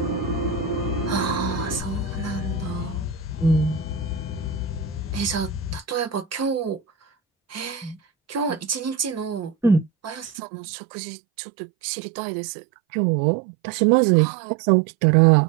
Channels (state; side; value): drops out; left; at 10.3 s